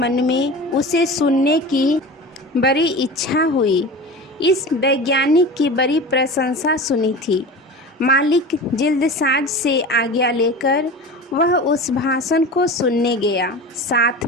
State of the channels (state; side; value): normal; both; correlation 0.33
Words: में उसे सुनने की बड़ी इच्छा हुई। इस वैज्ञानिक की बड़ी प्रशंसा सुनी थी। मालिक जिल्दसाज से आज्ञा लेकर वह उस भाषण को सुनने गया। साथ